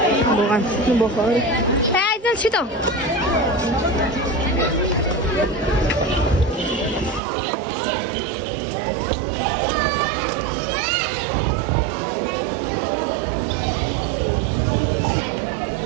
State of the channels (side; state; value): left; drops out; at 7.2 s